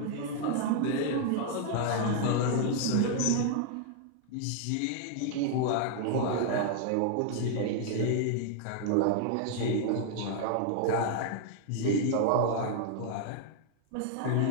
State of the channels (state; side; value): different; both; correlation 0.00